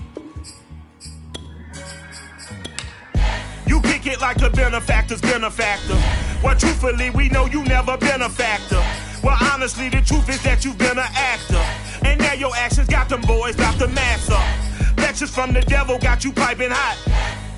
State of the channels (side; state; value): both; identical; correlation 1.00